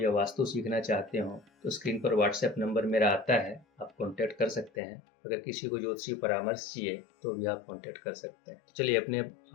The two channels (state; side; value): drops out; right; at 4.7 s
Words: वास्तु सीखना चाहते हो तो स्क्रीन पर व्हाट्सएप नंबर मेरा आता है, आप कॉन्टैक्ट कर सकते हैं। अगर किसी को ज्योतिषीय परामर्श चाहिए तो भी आप कॉन्टैक्ट कर सकते हैं। चलिए अपने